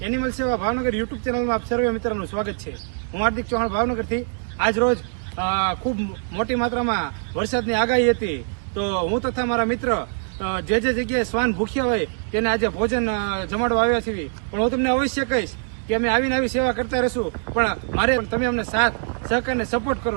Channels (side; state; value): left; silent; digital silence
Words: સેવા ભાવનગર યુટ્યુબ ચેનલમાં આપ સર્વે મિત્રોનું સ્વાગત છે. હું હાર્દિક ચૌહાણ ભાવનગરથી. આજ રોજ ખૂબ મોટી માત્રામાં વરસાદની આગાહી હતી, તો હું તથા મારા મિત્ર જે જગ્યાએ શ્વાન ભૂખ્યા હોય તેને આજે ભોજન જમાડવા આવ્યા છીએ. પણ હું તમને અવશ્ય કહીશ કે અમે આવીને આવી સેવા કરતા રહીશું, પણ મારે તમે અમને સાથ સહકાર ને સપોર્ટ